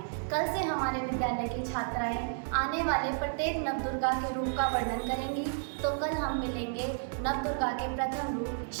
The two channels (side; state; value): left; silent; digital silence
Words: कल से हमारे विद्यालय की छात्राएं आने वाले प्रत्येक नवदुर्गा के रूप का वर्णन करेंगी। तो कल हम मिलेंगे नवदुर्गा के प्रथम रूप